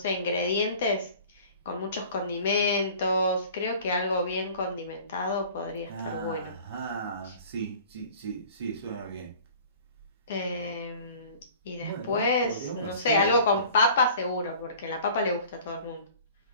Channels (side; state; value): both; inverted; correlation -0.46